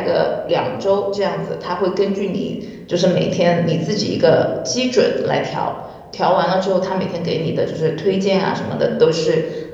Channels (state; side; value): identical; both; correlation 1.00